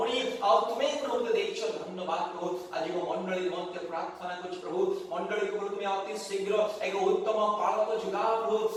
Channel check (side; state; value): both; identical; correlation 1.00